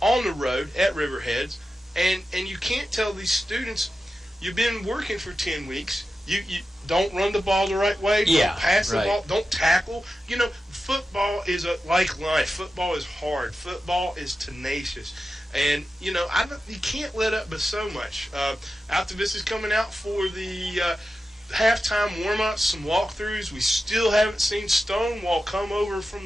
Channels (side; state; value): both; normal; correlation 0.92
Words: the road at Riverheads. And you can't tell these students, you've been working for 10 weeks. You don't run the ball the right way. Don't pass the ball. Don't tackle. Football is like life. Football is hard. Football is tenacious. And, you can't let up but so much. Altavista's coming out for the halftime warm-ups, some walkthroughs. We still haven't seen Stonewall come over